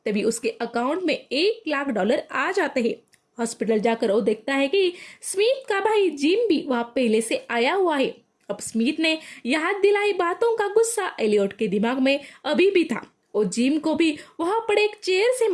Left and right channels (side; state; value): both; identical; correlation 1.00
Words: तभी उसके अकाउंट में $1,00,000 आ जाते हैं। हॉस्पिटल जाकर वो देखता है कि स्मिथ का भाई जिम भी वहाँ पहले से आया हुआ है। अब स्मिथ ने याद दिलाई बातों का गुस्सा एलियट के दिमाग में अभी भी था। वो जिम को भी वहां पड़े एक चेयर से